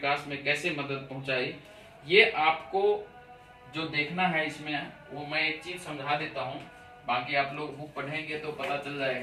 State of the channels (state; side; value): identical; both; correlation 1.00